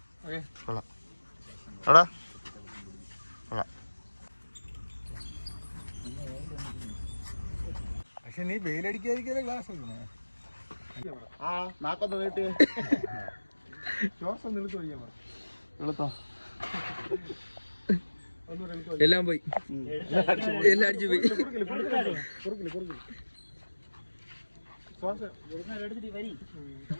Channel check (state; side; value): inverted; both; correlation -1.00